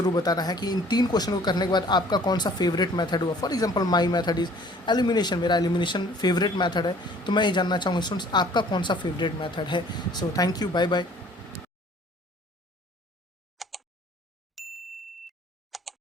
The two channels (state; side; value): normal; both; correlation 0.54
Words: बताना है कि इन 3 क्वेश्चन को करने के बाद आपका कौन सा फेवरेट मेथड हुआ। For example my method is elimination, मेरा एलिमिनेशन फेवरेट मेथड है, तो मैं ये जानना चाहूँगा स्टूडेंट्स आपका कौन सा फेवरेट मेथड है। So thank you, bye bye.